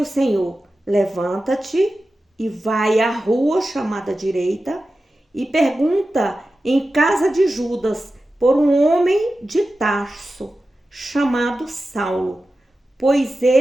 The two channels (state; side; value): normal; both; correlation 0.93